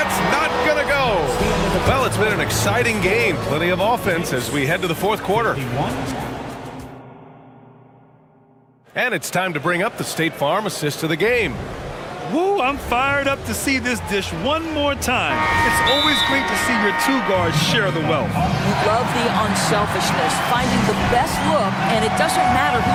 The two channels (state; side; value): identical; both; correlation 1.00